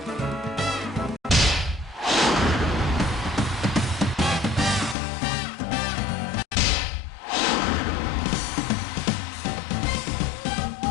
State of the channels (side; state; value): right; drops out; at 5.0 s